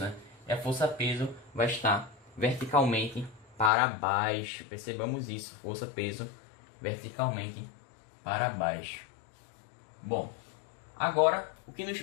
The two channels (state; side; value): drops out; right; at 3.7 s